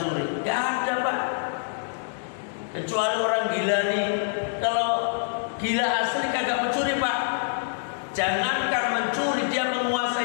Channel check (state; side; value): silent; right; digital silence